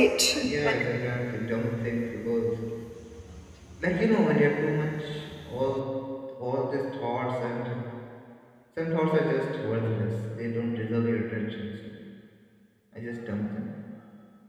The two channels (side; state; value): both; identical; correlation 1.00